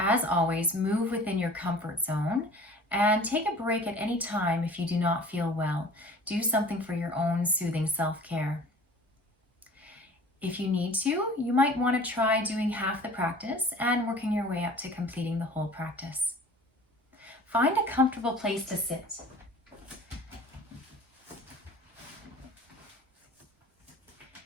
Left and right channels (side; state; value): both; normal; correlation 0.45